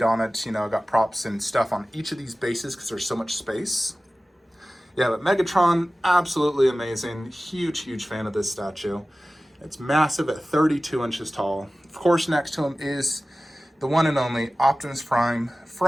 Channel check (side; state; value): both; normal; correlation 0.96